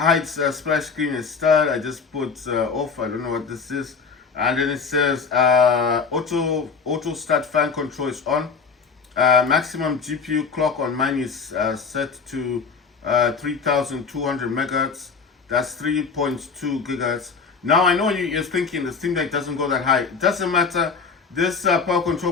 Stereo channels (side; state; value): right; quieter; 5.4 dB